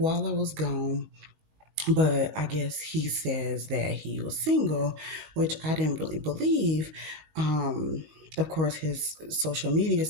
I was gone. But I guess he says that he was single, which I didn't really believe. Of course, his social media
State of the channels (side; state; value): left; late; 19 ms